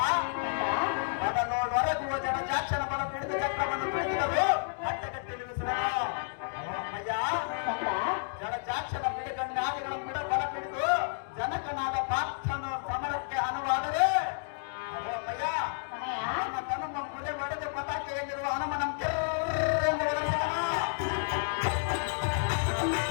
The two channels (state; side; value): silent; right; digital silence